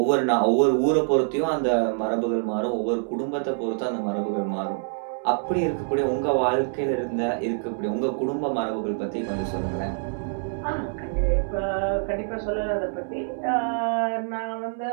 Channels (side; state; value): left; silent; 61 dB below the other